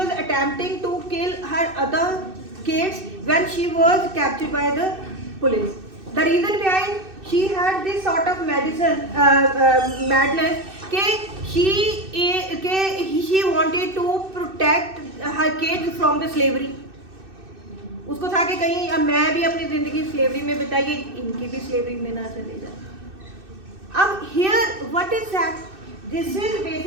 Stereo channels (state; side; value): late; left; 2.6 ms